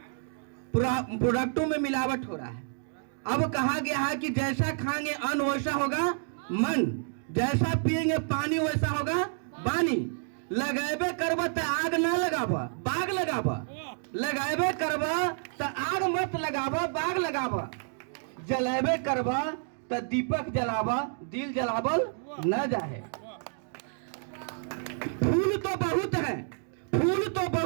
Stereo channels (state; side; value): silent; left; 58 dB below the other